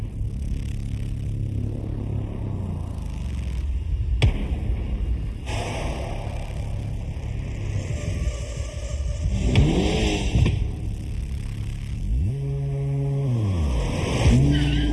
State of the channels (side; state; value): both; identical; correlation 1.00